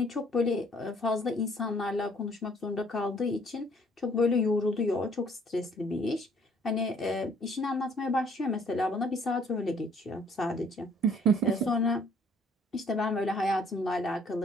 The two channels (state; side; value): normal; both; correlation 0.61